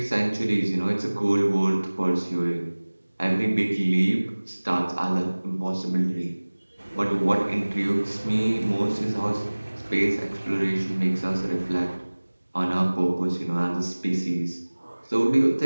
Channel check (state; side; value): inverted; both; correlation -1.00